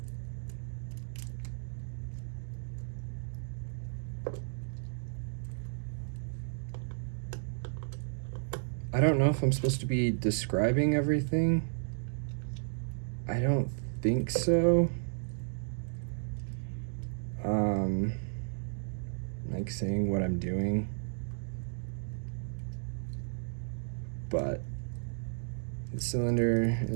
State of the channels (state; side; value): silent; left; digital silence